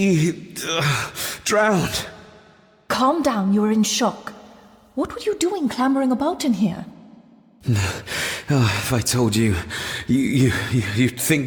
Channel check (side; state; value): both; identical; correlation 1.00